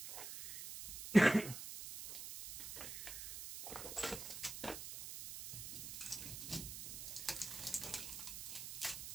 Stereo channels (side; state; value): right; noise; hiss, 8 dB below the sound